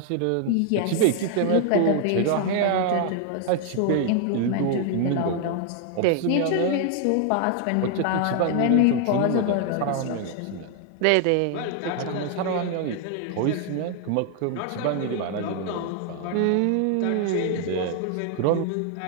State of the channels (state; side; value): different; both; correlation 0.00